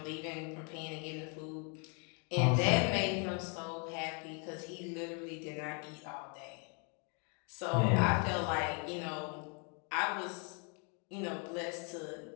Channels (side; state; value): right; quieter; 36.7 dB